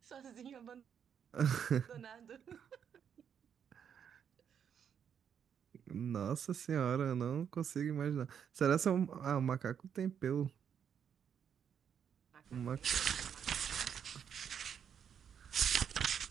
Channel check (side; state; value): left; quieter; 8.1 dB